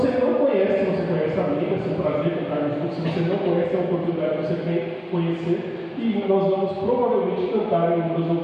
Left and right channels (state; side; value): identical; both; correlation 1.00